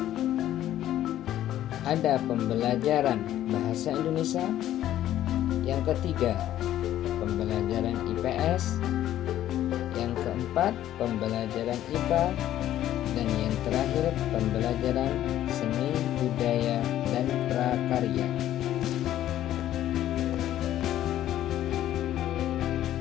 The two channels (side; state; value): right; quieter; 12.5 dB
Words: ada pembelajaran Bahasa Indonesia, yang ketiga pembelajaran IPS, yang keempat pembelajaran IPA, dan yang terakhir pembelajaran seni, budaya, dan prakarya.